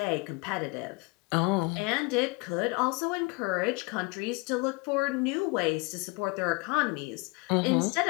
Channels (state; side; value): quieter; right; 28.6 dB